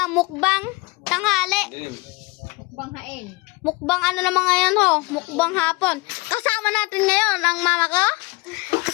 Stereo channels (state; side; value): quieter; right; 23.8 dB